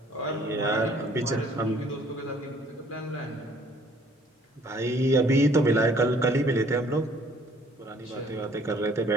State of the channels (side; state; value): both; normal; correlation 0.59